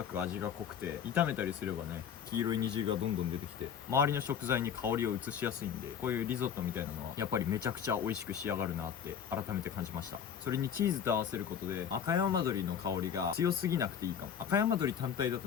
く味が濃くて炒めたりすればね黄色い煮汁がどんどん出てきて周りの食材に香りを移しやすいんで、こういうリゾットみたいなのはやっぱりめちゃくちゃ美味しく仕上がるなって改めて感じました。それにチーズと合わせることで赤山鶏の香りが強すぎなくていいかも。赤山鶏単体だ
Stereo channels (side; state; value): right; quieter; 8.1 dB